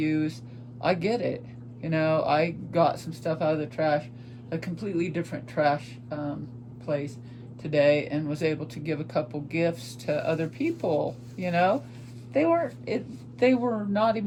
I get it. I got some stuff out of the trash, a completely different trash place today, and was able to give a couple gifts to other people. They were not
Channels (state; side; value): identical; both; correlation 1.00